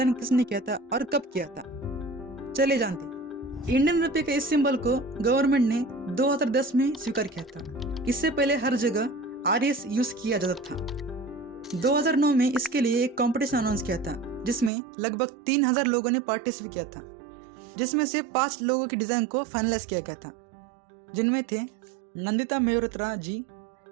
किसने किया था और कब किया था? चलिए जानते हैं। इंडियन रुपये के इस सिंबल को गवर्नमेंट ने 2010 में स्वीकार किया था। इससे पहले हर जगह आरएस यूज किया जाता था। 2009 में इसके लिए एक कंपटीशन अनाउंस किया था जिसमें लगभग 3000 लोगों ने पार्टिसिपेट किया था, जिसमें से 5 लोगों की डिजाइन को फाइनलाइज किया गया था, जिनमें थे नंदिता मेहरोत्रा जी,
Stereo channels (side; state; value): left; drops out; at 14.7 s